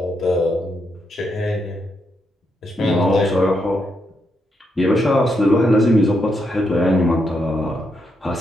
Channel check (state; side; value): normal; both; correlation 0.80